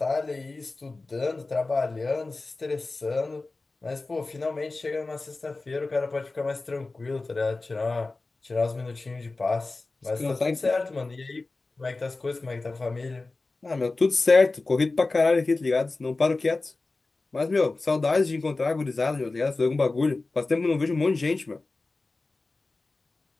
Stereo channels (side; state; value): right; quieter; 3.4 dB